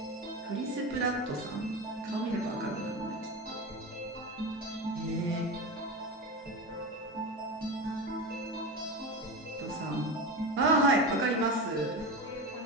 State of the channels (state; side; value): normal; both; correlation 0.23